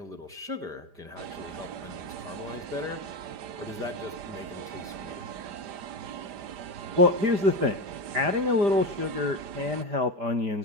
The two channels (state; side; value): late; left; 5.0 ms